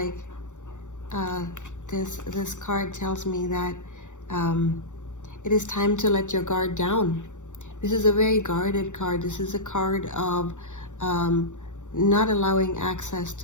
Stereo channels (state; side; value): late; right; 0.85 ms